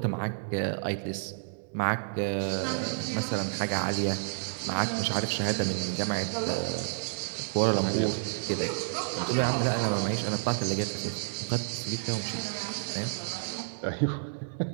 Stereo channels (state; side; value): silent; left; digital silence